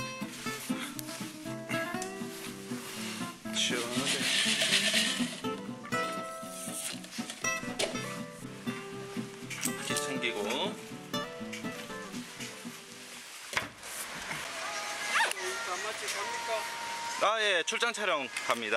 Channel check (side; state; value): both; identical; correlation 1.00